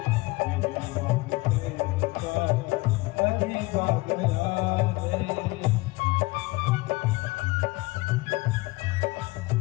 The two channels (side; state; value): right; quieter; 22.3 dB